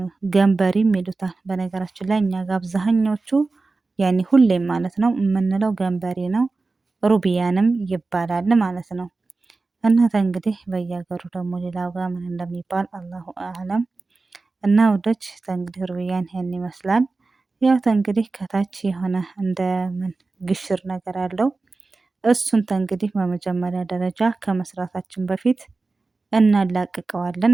ገንበሪም ይሉታል። በነገራችን ላይ እኛ ጋር አብዛኛዎቹ ያኔ ሁሌም ማለት ነው የምንለው ገንበሪ ነው። ሩቢያንም ይባላል ማለት ነው። እናተ እንግዲህ በየሀገሩ ደግሞ ሌላው ጋር ምን እንደሚባል አላሁ አለም። እና ውዶች እንግዲህ ሩቢያን ይሄን ይመስላል። ያው እንግዲህ ከታች የሆነ እንደ ምን ግሽር ነገር አለው። እሱን እንግዲህ በመጀመሪያ ደረጃ ከመስራታችን በፊት እናላቅቀዋለን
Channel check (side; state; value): left; quieter; 3.7 dB